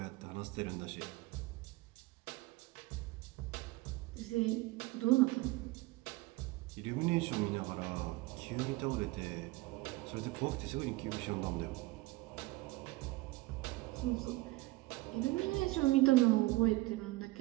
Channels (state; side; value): quieter; left; 20.7 dB